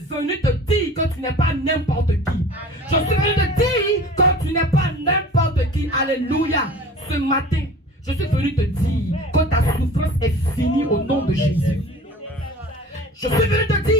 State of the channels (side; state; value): both; normal; correlation 0.42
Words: venu te dire que tu n'es pas n'importe qui. Je suis venu te dire que tu n'es pas n'importe qui. Alléluia. Ce matin, je suis venu te dire que ta souffrance est finie au nom de Jésus. Je suis venu te